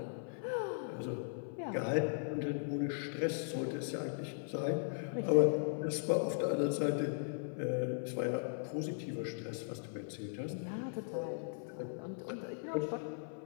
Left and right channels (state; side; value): silent; right; 52 dB below the other